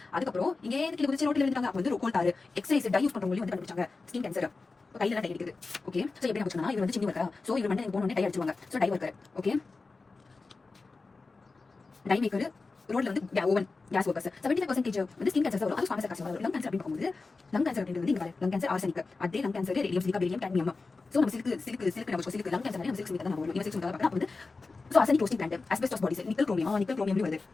அதுக்கு அப்புறம் இங்க கீழ குதிச்சு ரோட்ல விழுந்தாங்க. அப்ப வந்து கோல் தார், எக்ஸசைஸ், டை யூஸ் பண்றவங்க வந்து கண்டுபிடிச்சாங்க ஸ்கின் கேன்சர். கையில டை அடிக்குது. ஓகே, சோ எப்படி நான் சொன்னா இவர் வந்து சின்ன வர்க்கரா. சோ இவர் வந்து போன உடனே டை அடிச்சுவாங்க. So dye worker. Okay, dye maker, ரோட்ல வந்து ஓவன், கேஸ் வர்க்கர்ஸ். 75% வந்து ஸ்கின் கேன்சர் வரும். அது ஃபார்மஸ் கார்சினோமா வரும். லங் கேன்சர் அப்படின்னு பார்க்கும்போது லங் கேன்சர் அப்படின்றது வந்து இங்க பாரு, லங் கேன்சர் ஆர்சனிக், அதே lung cancer radium, silica, barium, cadmium. So நம்ம சிலிக்கு நம்ம சிலிக்கு லங் கேன்சர் நம்ம சிலிக்கு தான் நம்ம வரும். சிலிக்கு தான் பார்க்கலாம். அப்ப வந்து so arsenic roasting plant, asbestos bodies, nickel chromium, nickel chromium வருது.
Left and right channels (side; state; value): right; quieter; 3.9 dB